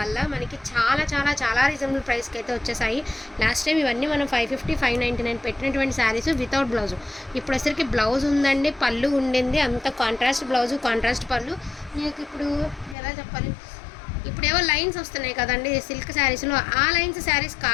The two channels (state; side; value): drops out; right; at 13.0 s